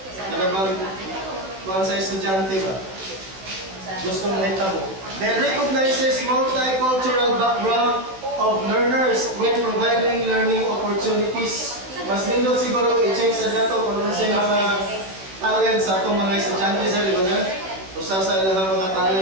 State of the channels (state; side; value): late; left; 16 ms